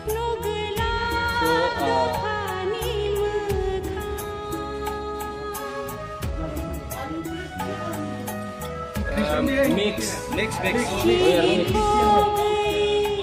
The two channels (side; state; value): both; identical; correlation 1.00